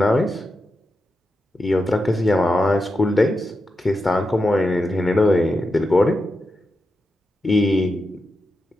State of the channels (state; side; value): normal; both; correlation 0.88